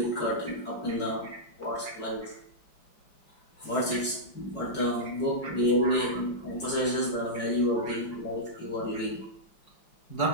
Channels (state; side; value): late; right; 5.3 ms